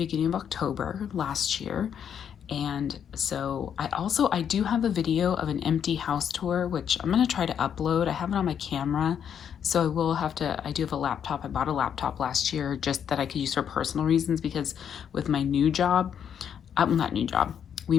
of October last year. And so I do have a video of an empty house tour, which I'm going to try to upload. I have it on my camera. So I do have a laptop. I bought a laptop last year just that I could use for personal reasons, because with my new job, not new job, we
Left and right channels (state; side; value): quieter; right; 8.4 dB